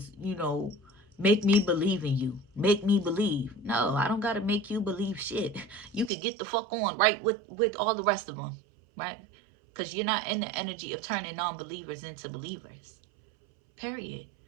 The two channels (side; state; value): left; drops out; at 6.1 s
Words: you know, make me believe in you. Make me believe. No, I don't got to make you believe shit. You could get the fuck on right with all the rest of them, right? Because you're not in the energy of turning non-believers into believers. Period.